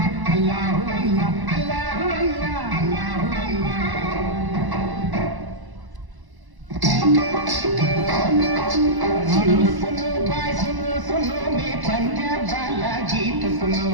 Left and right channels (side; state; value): left; late; 1.0 ms